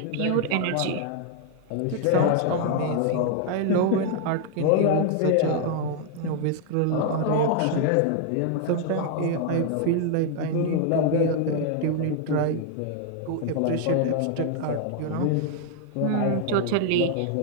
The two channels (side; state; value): both; different; correlation 0.00